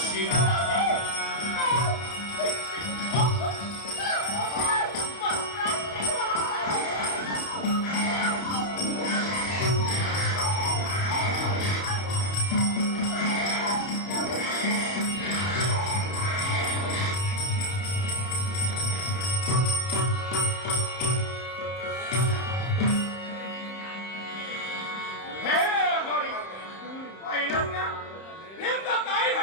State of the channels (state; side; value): late; right; 31 ms